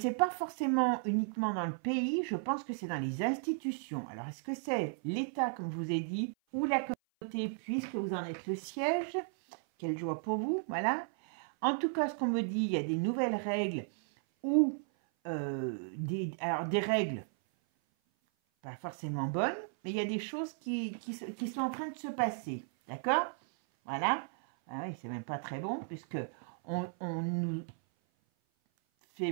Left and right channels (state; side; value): silent; left; 54 dB below the other